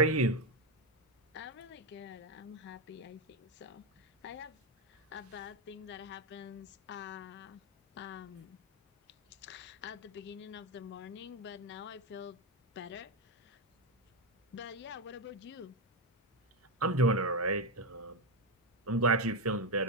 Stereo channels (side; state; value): both; normal; correlation 0.08